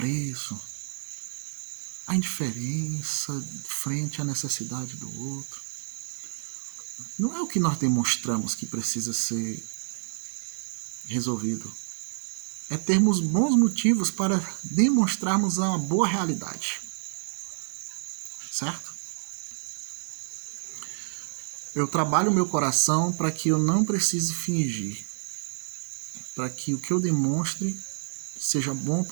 a indiferença frente à necessidade do outro. Não é o que nós demonstramos que precisa ser resolvido. É termos bons motivos para demonstrarmos uma boa realidade. Certo? Eu trabalho o meu coração para que eu não precise fingir. Para que o que eu demonstre seja bom,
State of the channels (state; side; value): silent; left; 59 dB below the other